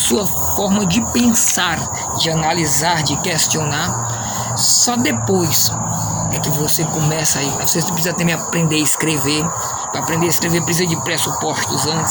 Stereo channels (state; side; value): identical; both; correlation 1.00